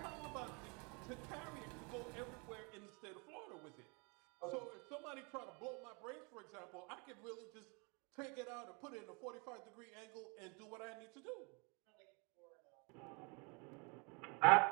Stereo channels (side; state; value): left; quieter; 32.0 dB